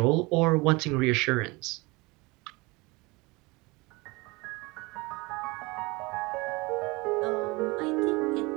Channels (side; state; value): left; quieter; 24.7 dB